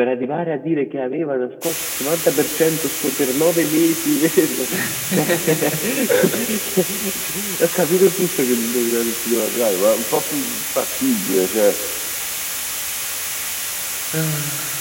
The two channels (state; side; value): identical; both; correlation 1.00